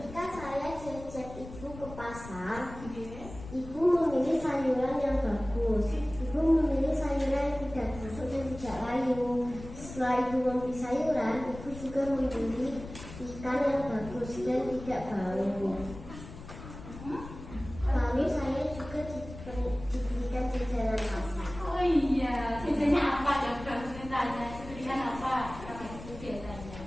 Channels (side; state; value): left; noise; rumble, 13 dB below the sound